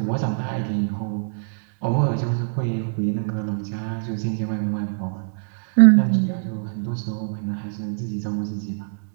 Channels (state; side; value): silent; left; 63 dB below the other